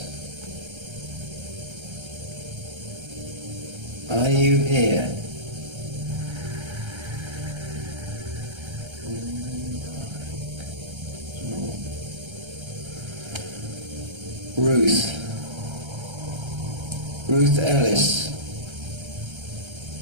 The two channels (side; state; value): left; late; 1.3 ms